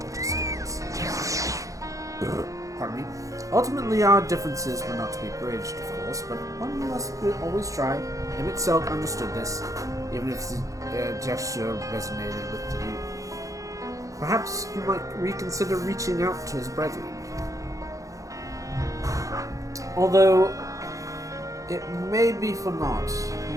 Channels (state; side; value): late; left; 0.16 ms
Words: Pardon me. Ultimately, our differences were not to be bridged, of course, but one must always try. Emmett Selk understood this, even if his gesture resonated with you. Perhaps you might reconsider reaching out to his brethren. Although, it may be for naught.